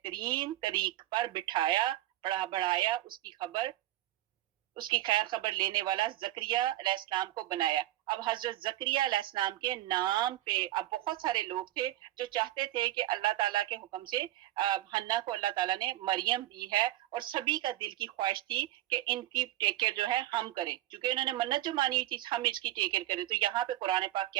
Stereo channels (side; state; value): left; quieter; 15.2 dB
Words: طریق پر بٹھایا، بڑھایا، اس کی خیر خبر لینے والا زکریا علیہ السلام کو بنایا. اب حضرت زکریا علیہ السلام کے نام پہ اب بہت سارے لوگ تھے جو چاہتے تھے کہ اللہ تعالیٰ کے حکم سے حنا کو اللہ تعالیٰ نے مریم دی ہے، اور سبھی کا دل کی خواہش تھی کہ ان کی ٹیک کیئر جو ہے ہم کریں، چونکہ انہوں نے منت جو مانی ہوئی تھی ہم اس کی ٹیک کیئر کریں. تو یہاں پہ قرآن پاک